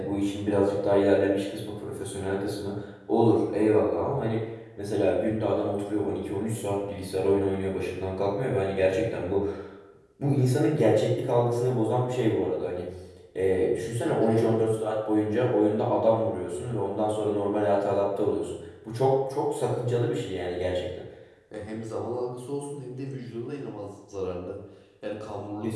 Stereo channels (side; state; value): both; identical; correlation 1.00